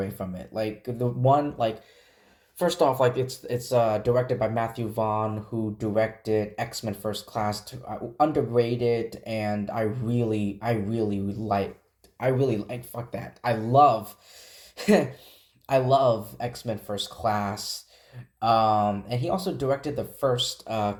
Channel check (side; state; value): both; identical; correlation 1.00